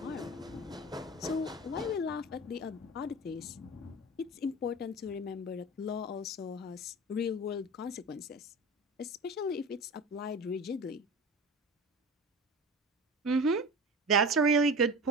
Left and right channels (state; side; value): normal; both; correlation 0.33